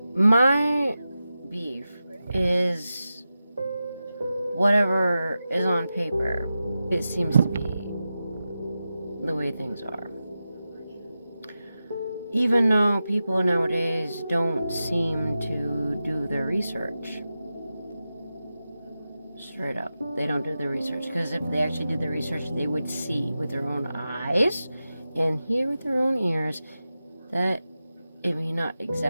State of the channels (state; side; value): inverted; both; correlation -0.92